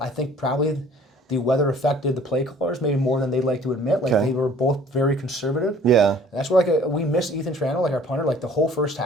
think probably the weather affected the play callers maybe more than they'd like to admit. Like they were both very conservative. Yeah. And that's where we missed Ethan Trano, like our punter, like the whole first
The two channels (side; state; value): both; normal; correlation 0.52